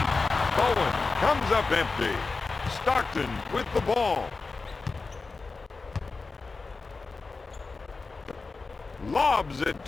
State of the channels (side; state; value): right; quieter; 4.0 dB